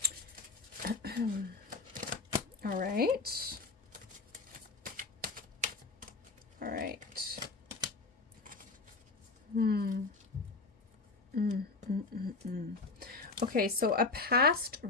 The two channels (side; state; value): right; quieter; 3.8 dB